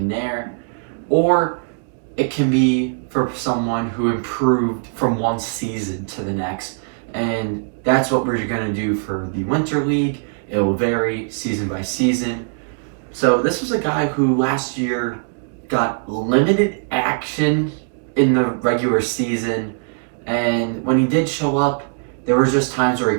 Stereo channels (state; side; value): silent; left; digital silence